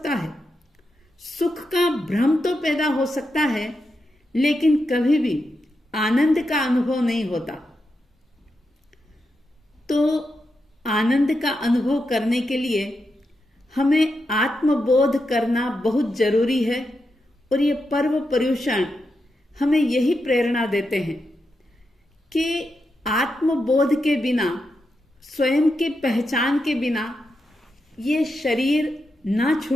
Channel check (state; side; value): normal; both; correlation 0.86